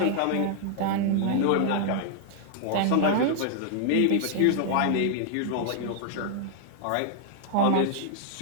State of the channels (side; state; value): both; different; correlation 0.00